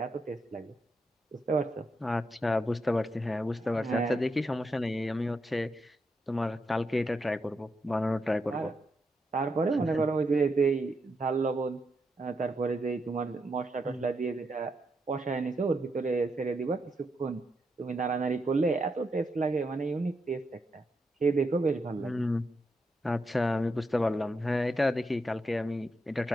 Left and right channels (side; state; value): both; normal; correlation 0.82